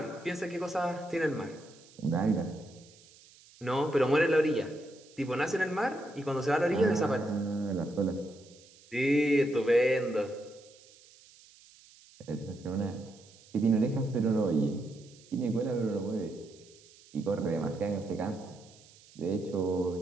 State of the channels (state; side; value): noise; right; hiss, 25 dB below the sound